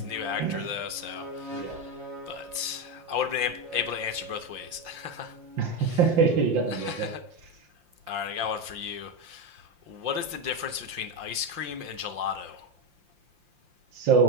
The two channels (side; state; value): left; late; 5.8 ms